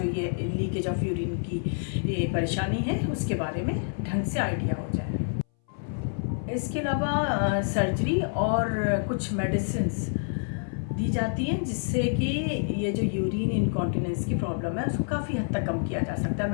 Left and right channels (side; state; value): right; silent; 59 dB below the other